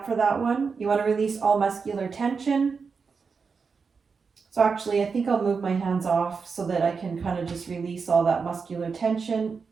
for that one. You want to release all muscular tension. So actually, I think I'll move my hands off so that I can kind of just release all that muscular tension.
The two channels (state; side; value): quieter; left; 5.2 dB